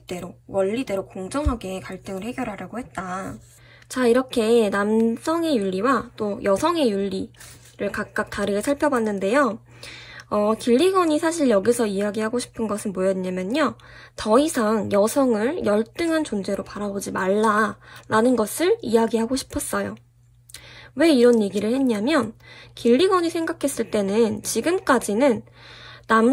원리대로 공정하게 갈등을 해결하려고 했다. 자, 이렇게 남성의 윤리와 또 여성의 윤리를 각각 다르게 살펴봤는데요. 길리건이 사실 여기서 이야기하고 싶은 것은 뭐였냐면요. 더 이상 여성을 열등한 존재로 바라보지 말라라는 것을 이야기하고 싶었어요. 왜 이런 얘기를 했냐면 길리건이 생각했을 때는 지금까지는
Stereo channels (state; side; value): identical; both; correlation 1.00